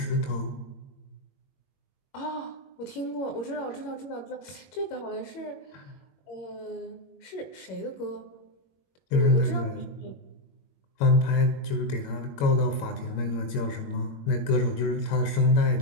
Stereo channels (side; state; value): right; late; 21 ms